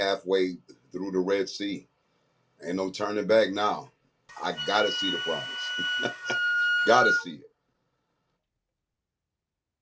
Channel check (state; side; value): identical; both; correlation 1.00